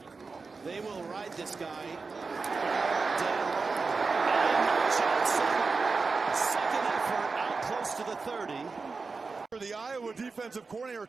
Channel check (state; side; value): quieter; left; 4.4 dB